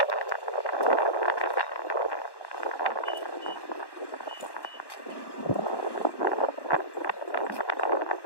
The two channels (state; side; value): late; right; 1.1 ms